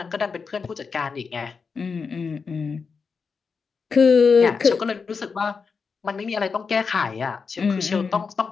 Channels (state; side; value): quieter; right; 5.3 dB